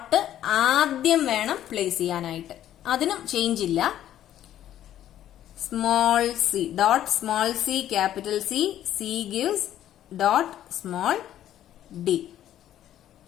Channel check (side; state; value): right; quieter; 11.8 dB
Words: ആദ്യം വേണം പ്ലേസ് ചെയ്യാനായിട്ട്. അതിനും ചേഞ്ച് ഇല്ല. Small c dot small c capital C, C gives dot small D.